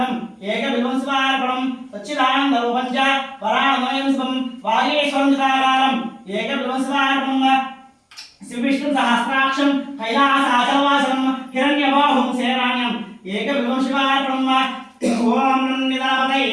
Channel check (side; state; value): both; identical; correlation 1.00